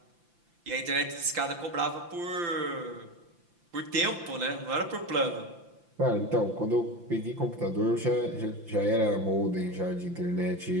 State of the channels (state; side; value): late; left; 5.8 ms